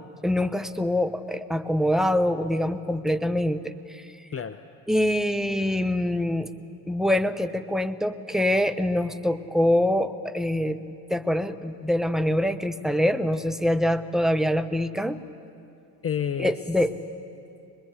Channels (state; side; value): normal; both; correlation 0.89